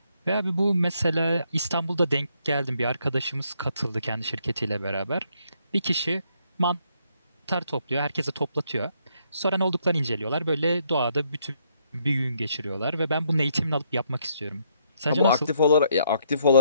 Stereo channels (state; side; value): inverted; both; correlation -0.72